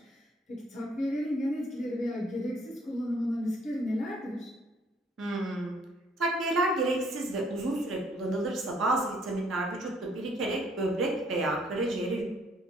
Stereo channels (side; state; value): both; normal; correlation 0.63